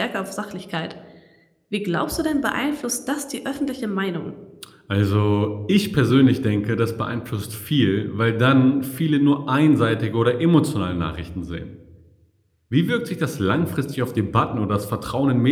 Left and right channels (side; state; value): both; identical; correlation 1.00